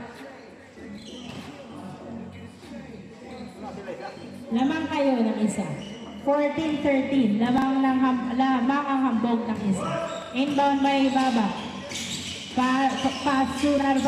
Lamang kayo ng isa. 14-13. Lamang ang hambog ng isa. Inbound by Baba. Pass to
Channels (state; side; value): identical; both; correlation 1.00